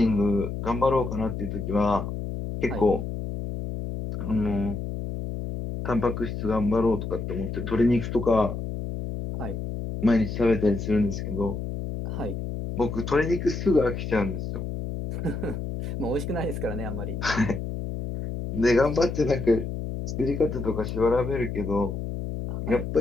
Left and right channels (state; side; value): noise; left; hum, 5 dB below the sound